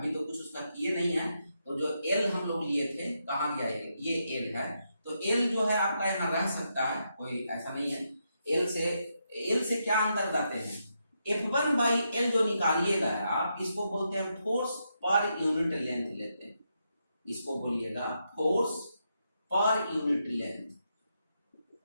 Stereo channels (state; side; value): inverted; both; correlation -0.82